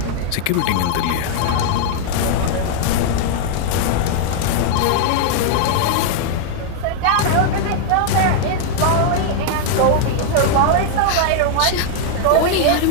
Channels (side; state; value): both; different; correlation 0.00